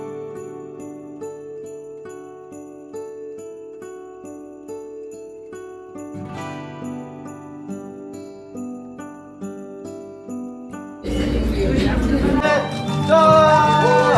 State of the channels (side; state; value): both; identical; correlation 1.00